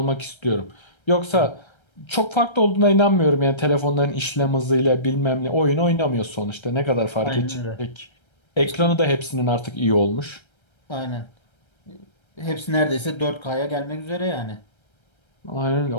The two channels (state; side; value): late; right; 1.3 ms